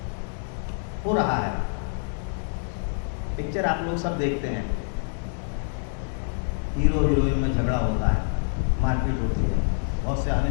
हो रहा है। पिक्चर आप लोग सब देखते हैं, हीरो हीरोइन में झगड़ा होता है, मारपीट होती है, बहुत से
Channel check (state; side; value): silent; right; digital silence